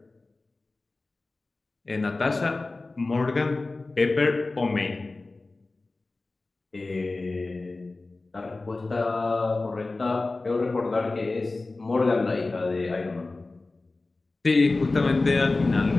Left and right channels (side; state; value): right; quieter; 3.3 dB